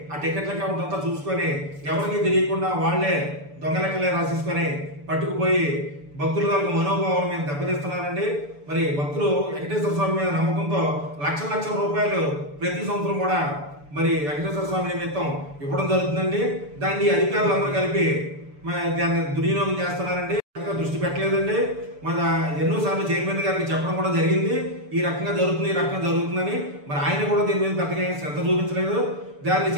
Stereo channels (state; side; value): late; left; 6.9 ms